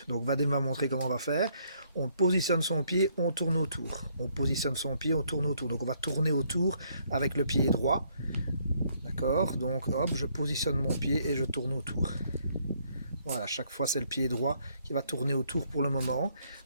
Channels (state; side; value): inverted; both; correlation -0.68